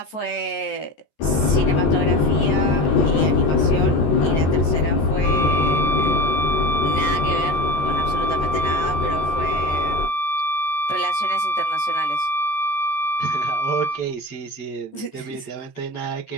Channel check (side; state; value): right; late; 14 ms